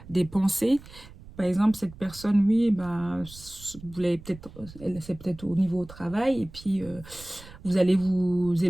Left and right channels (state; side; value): noise; right; rumble, 18 dB below the sound